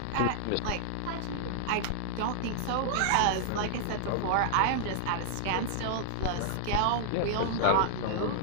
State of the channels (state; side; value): different; both; correlation -0.01